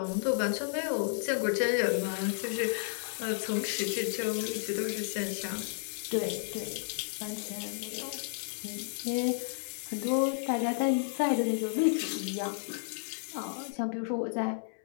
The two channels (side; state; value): right; silent; 56 dB below the other